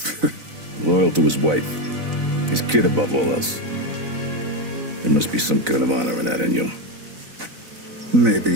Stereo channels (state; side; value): late; left; 4.0 ms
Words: Loyal to his wife. His kid above all else. There must be some kind of honor in that in you.